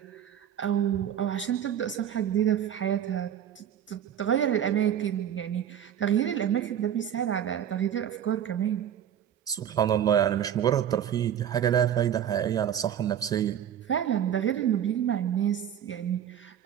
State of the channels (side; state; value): left; quieter; 9.8 dB